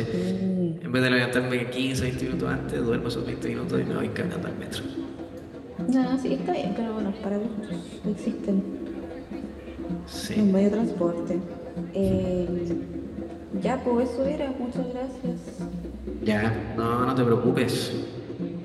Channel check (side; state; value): both; identical; correlation 1.00